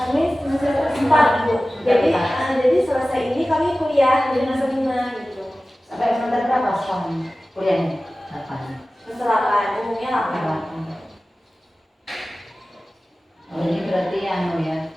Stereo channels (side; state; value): both; normal; correlation 0.96